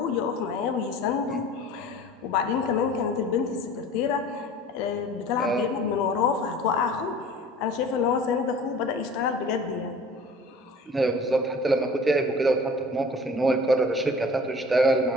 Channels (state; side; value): normal; both; correlation 0.44